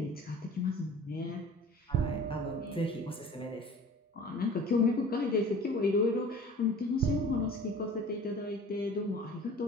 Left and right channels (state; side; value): normal; both; correlation 0.44